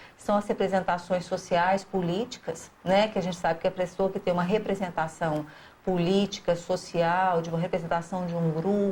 são as representações sociais, políticas, né? Que a gente sabe que a pessoa que tem uma representação política, social, de uma representação de um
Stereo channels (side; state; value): both; identical; correlation 1.00